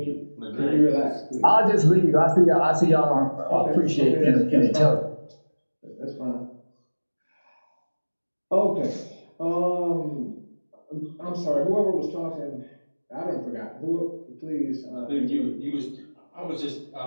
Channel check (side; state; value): both; inverted; correlation -1.00